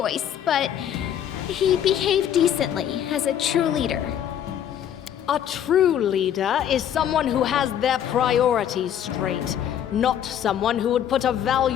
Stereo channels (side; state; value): right; quieter; 9.9 dB